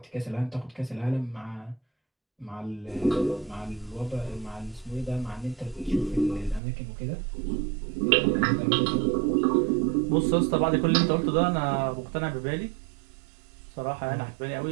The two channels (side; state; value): left; drops out; at 6.6 s